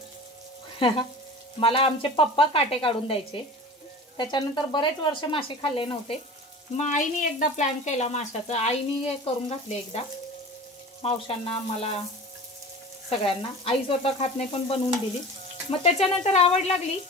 मला आमचे पप्पा काटे काढून द्यायचे, त्याच्यानंतर बरेच वर्ष मासे खाल्ले नव्हते। मग आईने एकदा प्लॅन केला माशाचा, आईने करून घातले एकदा मावशांना, मला, सगळ्यांना। आई स्वतः खात नाही पण बनवून दिली। मग त्याच्यानंतर आवड लागली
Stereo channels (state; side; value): normal; both; correlation 0.37